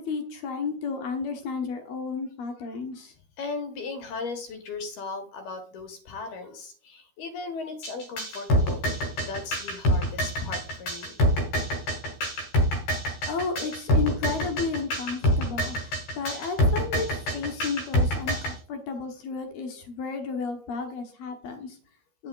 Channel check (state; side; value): late; right; 13 ms